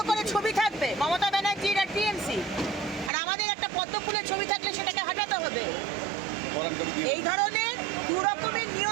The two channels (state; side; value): drops out; left; at 3.1 s